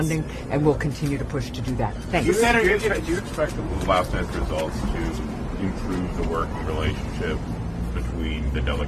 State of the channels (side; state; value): both; identical; correlation 1.00